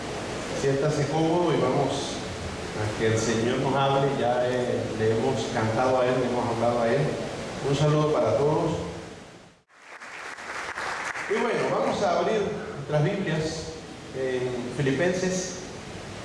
Siéntase cómodo y vamos a que el Señor nos hable. Ya le hemos cantado a Él, le hemos hablado a Él. Un saludo para todos. Y bueno, vamos a abrir nuestras Biblias en Filipenses,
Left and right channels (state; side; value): identical; both; correlation 1.00